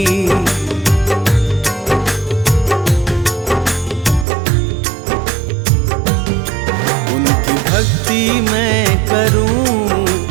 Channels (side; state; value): left; drops out; at 4.2 s